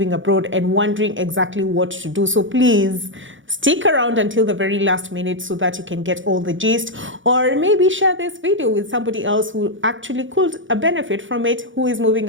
abroad and wondering exactly what to do. So please stick around until the very last minute so that you can get all the gist, or maybe share this video with somebody else who actually could benefit from it, who is moving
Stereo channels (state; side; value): late; left; 0.56 ms